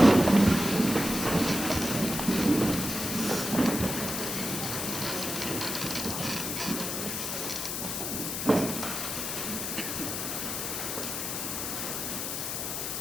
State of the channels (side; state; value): left; noise; hiss, 3 dB below the sound